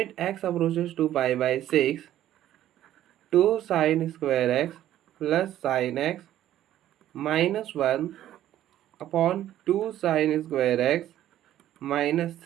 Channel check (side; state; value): left; quieter; 12.5 dB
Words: X approaches to pi by 6 2 sine square X plus sine X minus 1 upon 2 sine square X minus